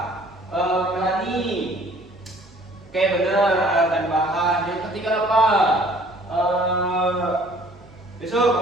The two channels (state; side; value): normal; both; correlation 0.55